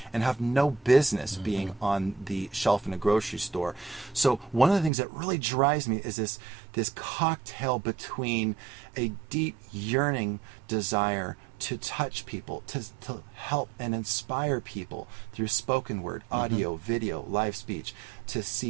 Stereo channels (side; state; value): left; drops out; at 4.9 s